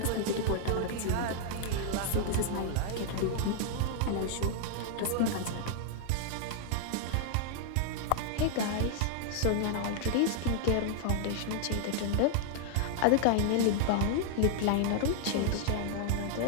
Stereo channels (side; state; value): both; different; correlation 0.00